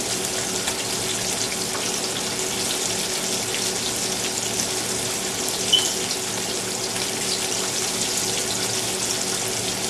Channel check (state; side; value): identical; both; correlation 1.00